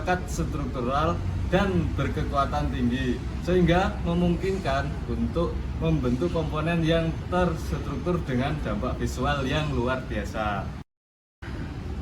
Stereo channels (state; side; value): identical; both; correlation 1.00